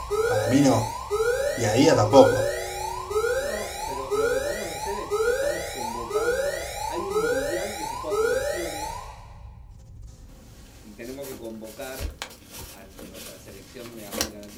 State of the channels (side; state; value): both; identical; correlation 1.00